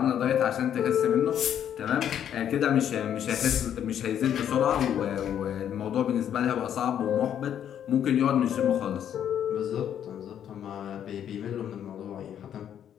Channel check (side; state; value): right; quieter; 9.7 dB